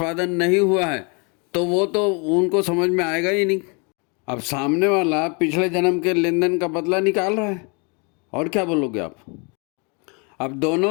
नहीं हुआ है तो वो तो उनको समझ में आएगा ही नहीं। अब सामने वाला पिछले जन्म के लेन देन का बदला निकाल रहा है, और क्या बोलोगे आप? अब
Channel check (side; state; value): right; quieter; 33.1 dB